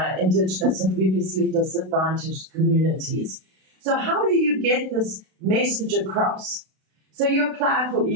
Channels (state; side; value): late; left; 32 ms